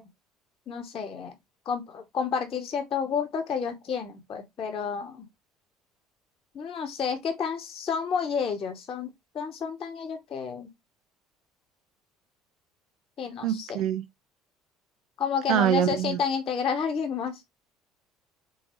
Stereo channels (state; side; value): normal; both; correlation 0.42